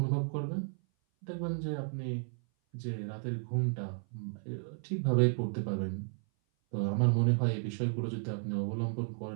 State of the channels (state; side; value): silent; left; 55 dB below the other